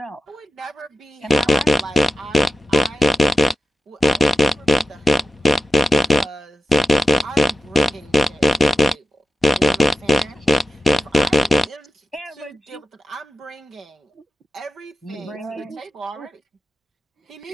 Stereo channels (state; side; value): normal; both; correlation 0.94